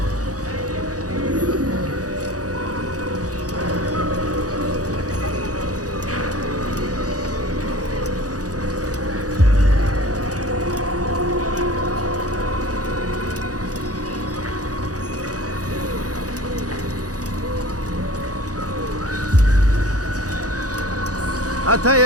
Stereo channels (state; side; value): late; left; 0.67 ms